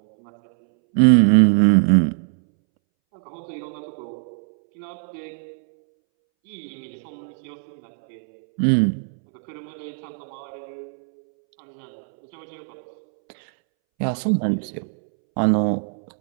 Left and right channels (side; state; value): left; silent; 64 dB below the other